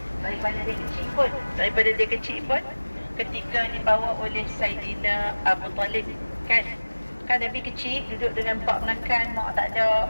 daripada dia kecil pun ketika dibawa oleh Saidina Abu Talib, kan Nabi kecil duduk dengan pak menakan, mak tak ada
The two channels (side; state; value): both; inverted; correlation -1.00